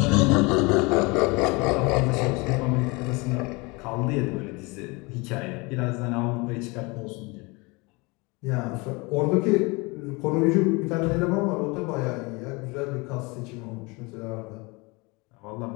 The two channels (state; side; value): quieter; right; 26.7 dB